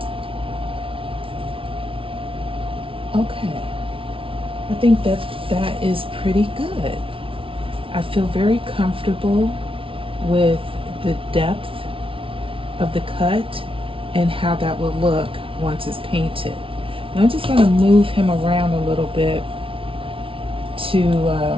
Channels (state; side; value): late; left; 0.26 ms